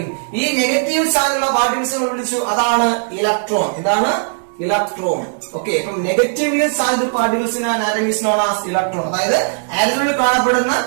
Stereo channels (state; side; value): silent; left; digital silence